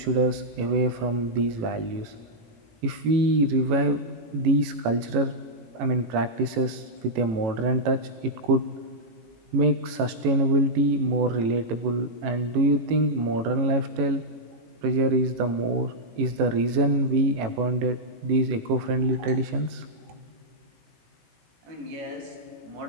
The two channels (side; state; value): left; late; 18 ms